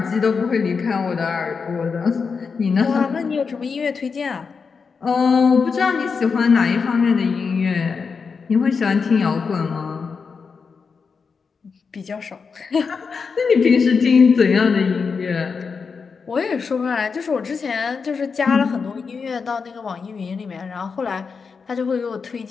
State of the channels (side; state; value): right; quieter; 5.3 dB